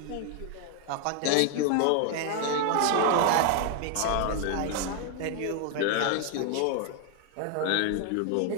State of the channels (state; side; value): different; both; correlation 0.00